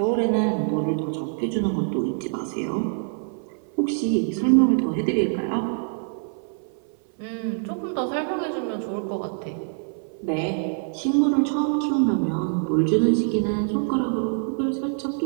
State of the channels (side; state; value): left; silent; 56 dB below the other